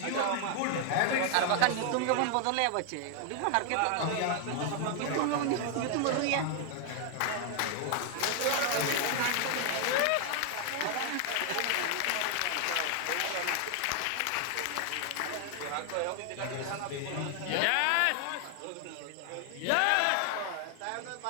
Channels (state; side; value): different; both; correlation 0.00